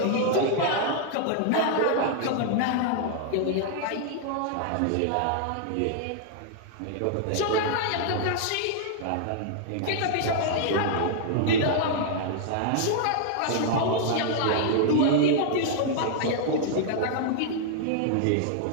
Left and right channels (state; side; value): different; both; correlation -0.01